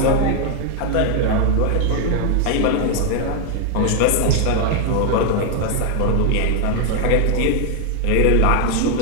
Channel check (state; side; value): different; both; correlation 0.00